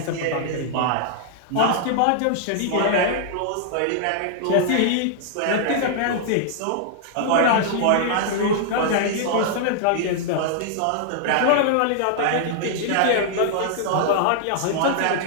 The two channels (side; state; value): both; different; correlation -0.01